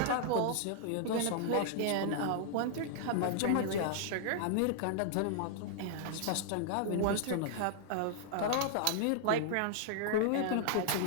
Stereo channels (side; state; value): both; different; correlation -0.01